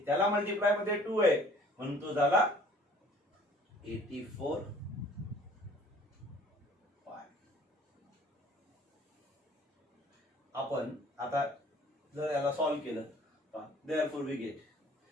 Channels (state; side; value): normal; both; correlation 0.54